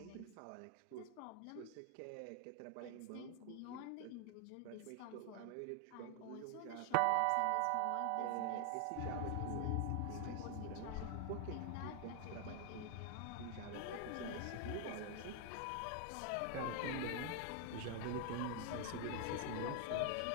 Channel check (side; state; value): both; different; correlation 0.00